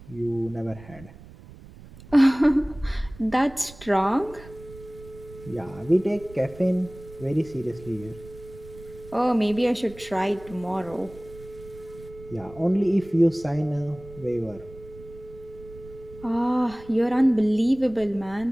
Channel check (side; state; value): right; noise; rumble, 19 dB below the sound